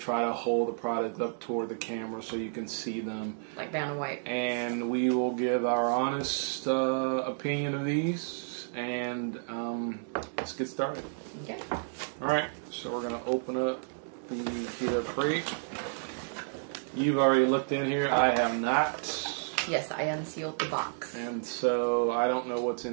to hold the product up toward the camera so you can see them. Like brown and white. And we will give our honest opinion of these. And let's get started. Okay. Alright, so we're going to open up the Keto Crate. You've already looked in here. I have not. Yes, I unsealed the box. And so I don't know what's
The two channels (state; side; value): silent; left; digital silence